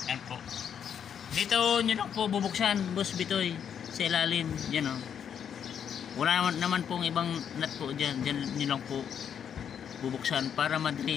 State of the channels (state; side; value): quieter; right; 8.2 dB